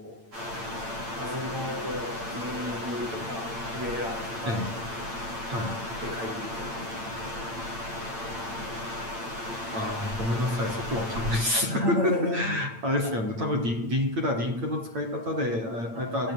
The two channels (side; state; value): left; late; 8.8 ms